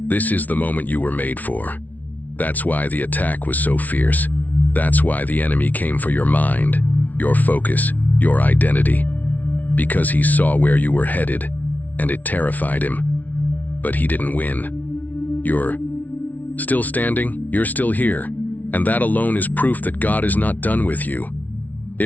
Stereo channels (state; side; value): late; right; 0.075 ms